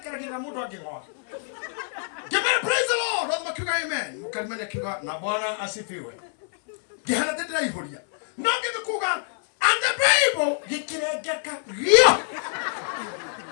mundu angengoa. Gemera praise the Lord. Roho makiuga amen. Mukalimanya kiuga na Bwana asifiwe. Gehana tendera ihoria. No ngikuga and the Bible gikirengeka rio.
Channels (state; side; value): silent; right; 61 dB below the other